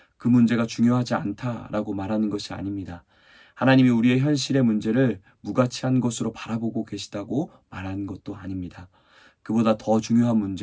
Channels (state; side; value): identical; both; correlation 1.00